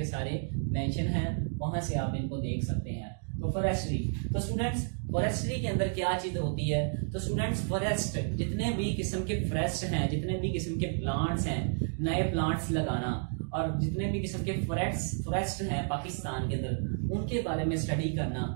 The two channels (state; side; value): silent; left; 57 dB below the other